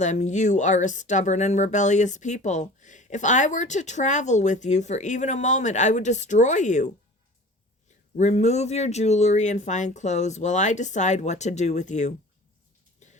"You are a stubborn and rebellious people. If I were to travel with you for even a moment, I would destroy you. Remove your jewelry and fine clothes while I decide what to do with you."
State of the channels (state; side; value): normal; both; correlation 0.42